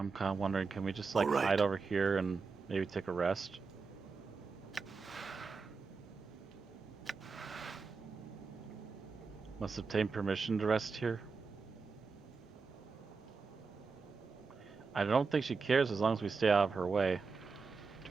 kind of wondering, can we just like Alright. hide over here and maybe take a rest? Must obtain permission to rest here. I don't think she cares as long as we stay out of her way, to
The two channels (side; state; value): left; quieter; 4.7 dB